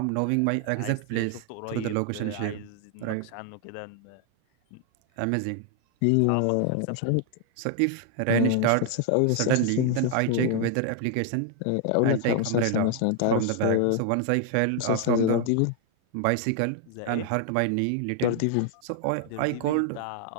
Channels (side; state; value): both; different; correlation 0.00